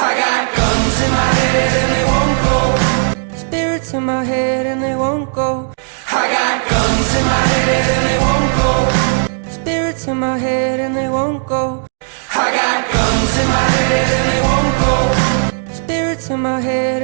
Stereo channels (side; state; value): left; silent; digital silence